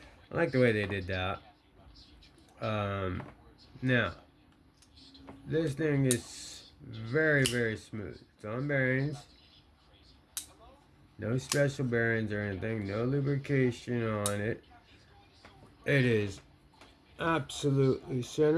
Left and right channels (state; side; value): identical; both; correlation 1.00